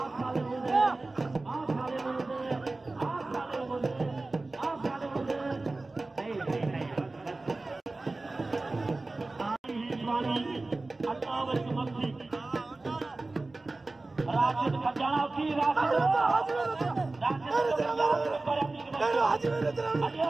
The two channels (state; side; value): quieter; left; 3.2 dB